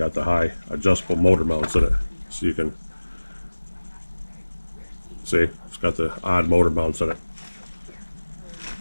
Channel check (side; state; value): both; inverted; correlation -1.00